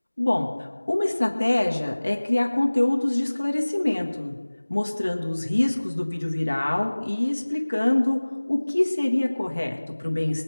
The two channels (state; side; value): inverted; both; correlation -1.00